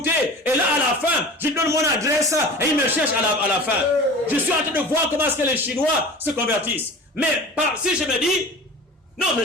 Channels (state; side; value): normal; both; correlation 0.38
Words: et là à la fin, je lui donne mon adresse, et il me cherche à la fin. Je suis en train de voir comment est-ce que les Chinois se convertissent. Mais si je me dis, non, mais